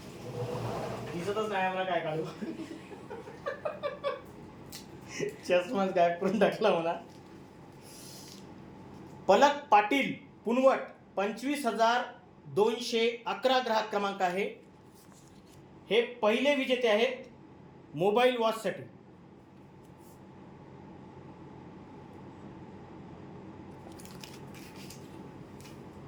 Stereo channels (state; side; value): identical; both; correlation 1.00